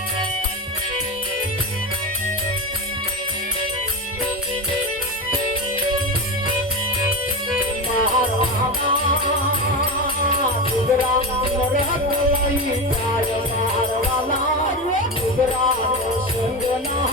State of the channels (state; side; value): normal; both; correlation 0.20